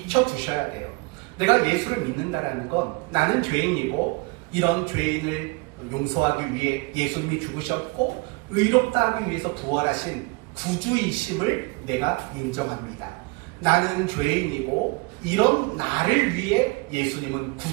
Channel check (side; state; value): left; quieter; 27.1 dB